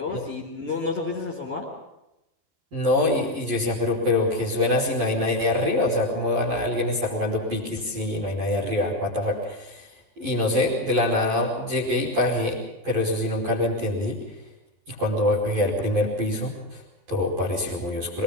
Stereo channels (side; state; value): left; late; 11 ms